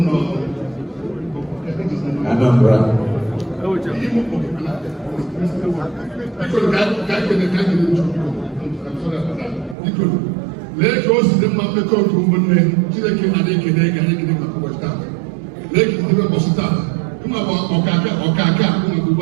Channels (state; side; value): drops out; left; at 9.8 s